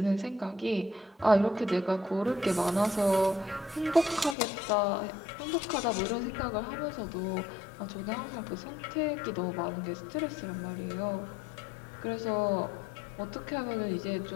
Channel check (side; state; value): right; drops out; at 4.4 s